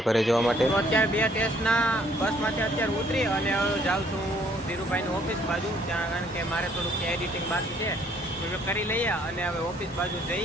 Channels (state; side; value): normal; both; correlation 0.63